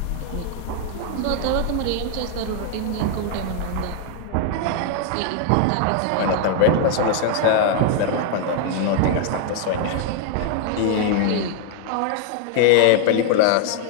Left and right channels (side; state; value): both; different; correlation 0.00